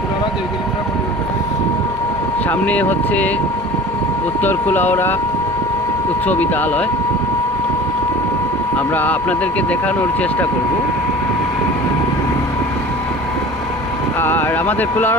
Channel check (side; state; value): both; normal; correlation 0.41